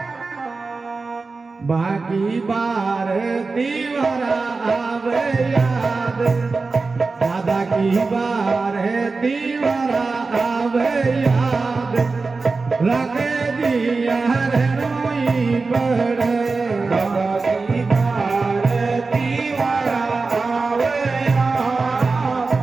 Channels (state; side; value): quieter; left; 4.0 dB